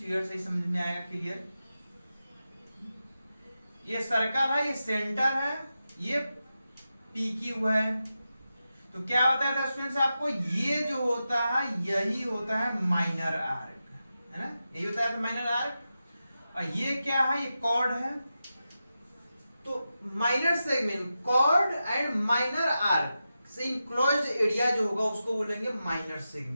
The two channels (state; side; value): inverted; both; correlation -0.91